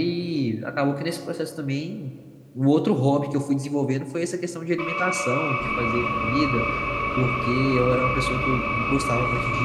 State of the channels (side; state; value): both; identical; correlation 1.00